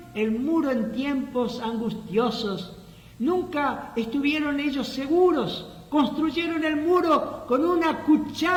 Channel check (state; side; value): identical; both; correlation 1.00